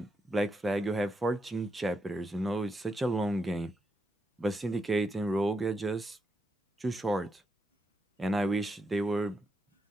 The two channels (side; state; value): both; normal; correlation 0.83